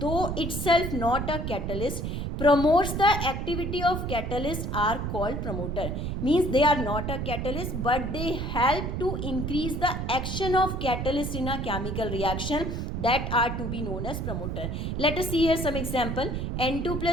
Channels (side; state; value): right; noise; rumble, 3 dB below the sound